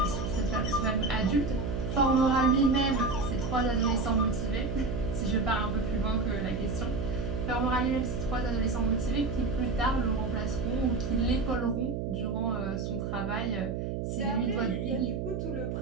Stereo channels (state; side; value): noise; right; hum, 3 dB below the sound